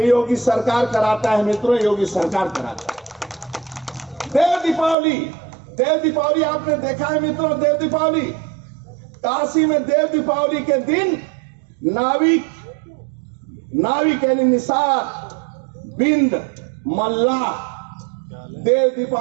योगी सरकार कराता है मित्रों, योगी सरकार कराता है। देव दीपावली आपने देखा है मित्रों, देव दीपावली काशी में देव दीपावली के दिन नाविक यानी निषाद, बिंद, मल्लाह, देव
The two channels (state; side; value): drops out; left; at 5.0 s